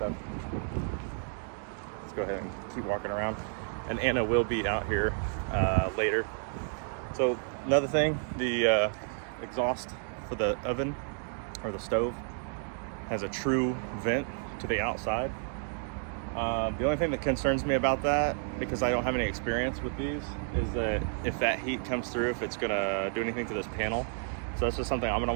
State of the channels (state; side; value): silent; left; 57 dB below the other